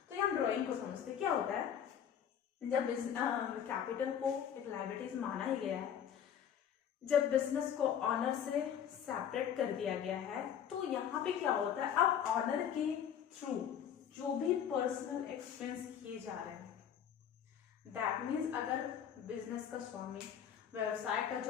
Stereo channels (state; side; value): quieter; right; 8.9 dB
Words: तो हम ड्राइंग को समझते हैं। क्या होता है जब कैपिटल को एक लायबिलिटीज माना ही गया है, जब बिजनेस को ऑनर से सेपरेट कर दिया गया है, तो यहाँ पे क्या होता है, अब ऑनर के थ्रू जो भी पर्सनल एक्सपेंस किए जा रहे हैं, दैट मीन्स अगर बिजनेस का स्वामी, व्यवसाय का